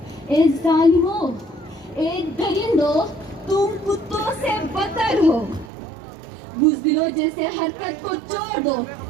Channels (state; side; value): drops out; left; at 5.7 s